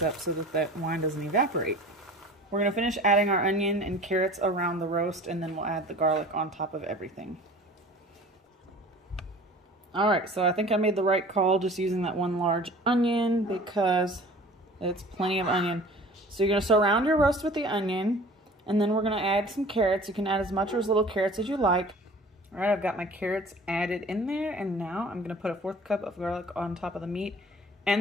up so that that wine doesn't evaporate. We're going to finish adding our onion and carrots around the roast, and then we'll add the garlic on top of everything. All right, so I think I made the right call just using that 1 large onion because it's plenty of onion. So you're going to surround your roast with the onion, and then we're going to add some carrots. You can add as much or as little carrots as you like. All right, I've got my carrots added in there, and now I'm going to put a 1/4 cup of garlic on top of the meat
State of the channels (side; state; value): both; normal; correlation 0.44